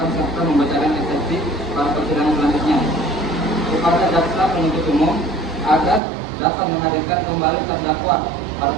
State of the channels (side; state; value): left; drops out; at 6.0 s